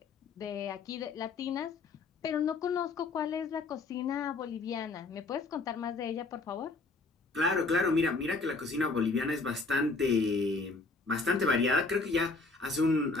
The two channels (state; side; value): quieter; right; 3.8 dB